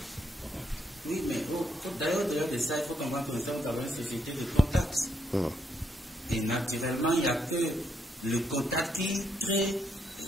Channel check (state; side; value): normal; both; correlation 0.76